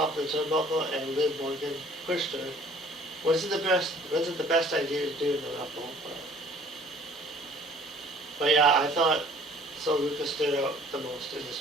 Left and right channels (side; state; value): both; normal; correlation 0.54